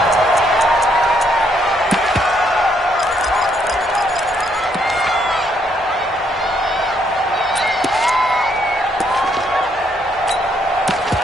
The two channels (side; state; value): both; normal; correlation 0.72